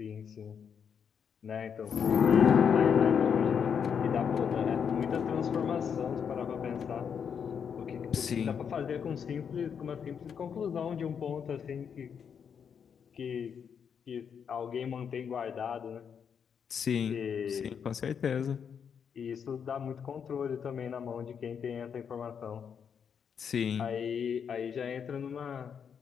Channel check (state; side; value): quieter; right; 7.3 dB